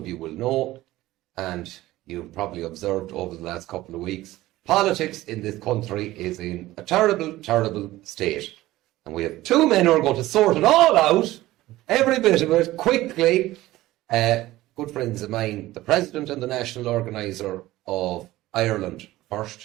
you will know, and you've probably observed over the last couple of weeks, politics in this country is in a terrible, terrible state. And we have two men who are going to sort it all out, every bit of it, quickly. Good friends of mine, the President and the National Organiser of Ireland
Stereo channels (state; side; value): quieter; left; 16.8 dB